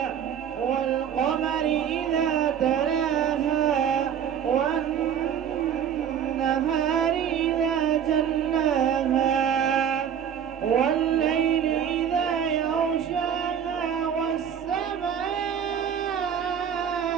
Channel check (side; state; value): left; quieter; 8.6 dB